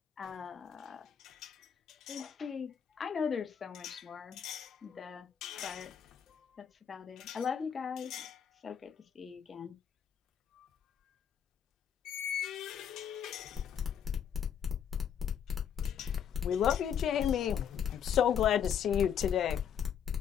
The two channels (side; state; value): right; quieter; 8.3 dB